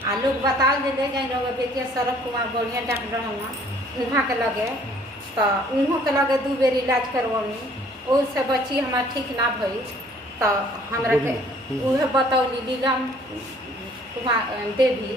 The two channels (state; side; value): normal; both; correlation 0.58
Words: आ लोग बता दे जाए लोग बेटिया सड़क कुमार बढ़िया डॉक्टर हम वहाँ के लगे तो उन्हों के लगे 2 बेर इलाज करवानी, उससे बच्ची हमार ठीक ना भई तो हमरा के उहे बतौली लीलाम कुमार देवी